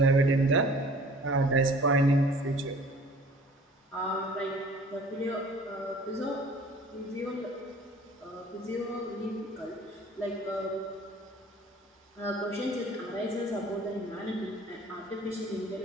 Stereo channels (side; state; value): both; normal; correlation 0.49